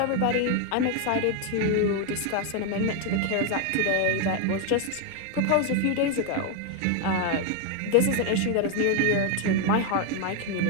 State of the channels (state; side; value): different; both; correlation 0.01